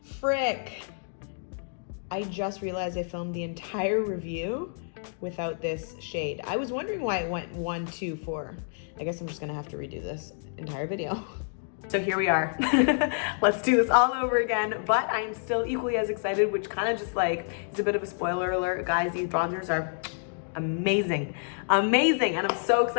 frick. I just realized I filmed the entire review without this shade. I was wondering why it went 1, 2, 4. I guess I'm just gonna have to redo this entire video. So here we are. Let's do this all over again, but I am still equally as excited, which kind of just like is a bit of a spoiler alert. Guys, these bronzers are amazing, amazing, and I'm so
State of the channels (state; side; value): silent; right; digital silence